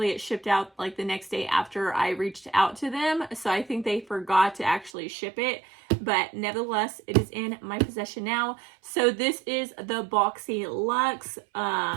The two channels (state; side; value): drops out; left; at 4.9 s